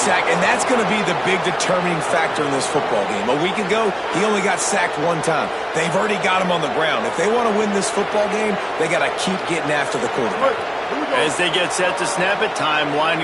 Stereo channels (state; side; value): identical; both; correlation 1.00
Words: and that's going to be the big determining factor in this football game. A week ago, he only got sacked 1 time. They've already got him on the ground. If they want to win this football game, they got to keep getting after the quarterback. As they get set to snap it, time